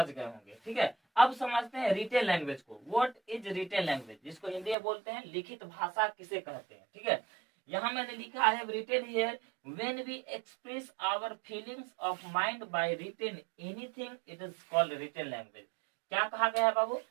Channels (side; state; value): left; drops out; at 4.8 s